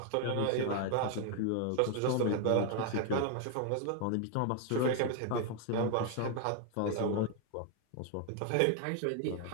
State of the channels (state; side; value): different; both; correlation 0.01